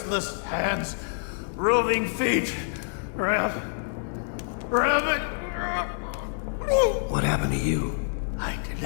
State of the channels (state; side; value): silent; right; digital silence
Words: hands, roving feet, rabbit. What happened to you? I